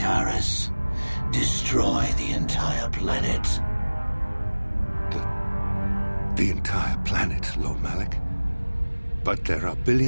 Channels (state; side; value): inverted; both; correlation -1.00